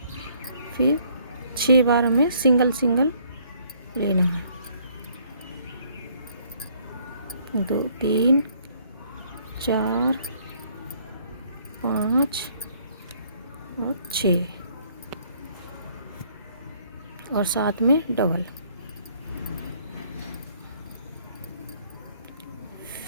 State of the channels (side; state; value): both; inverted; correlation -0.63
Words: फिर 6 बार हमें सिंगल सिंगल लेना है। 2 3 4 5 और 6 और साथ में डबल,